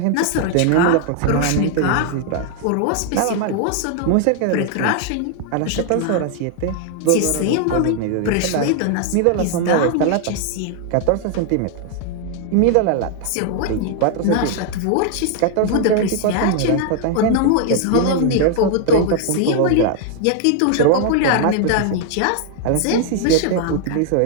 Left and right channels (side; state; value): both; different; correlation 0.00